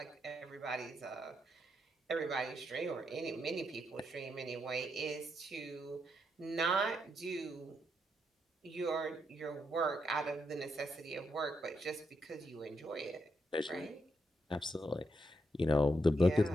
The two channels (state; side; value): normal; both; correlation 0.80